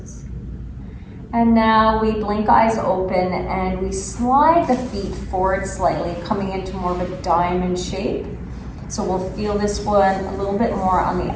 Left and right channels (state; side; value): identical; both; correlation 1.00